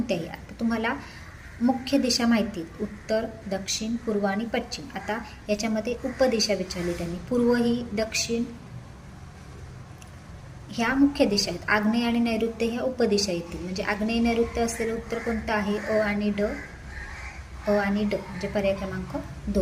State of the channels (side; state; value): both; identical; correlation 1.00